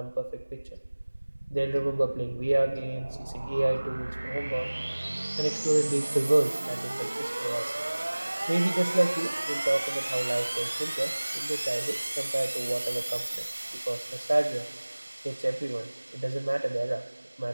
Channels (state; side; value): inverted; both; correlation -1.00